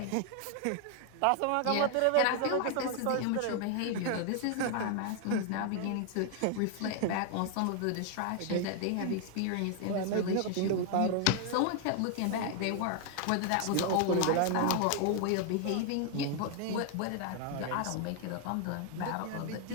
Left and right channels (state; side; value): different; both; correlation 0.00